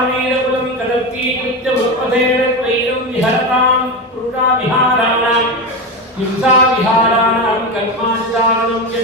கதர்த்தி கிருத்ய உற்பதேன த்வைரம் விஹரதாம் புருஷா விஹாராணாம் हिंसा विहाराणां कर्माचारणं च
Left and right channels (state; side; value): normal; both; correlation 0.17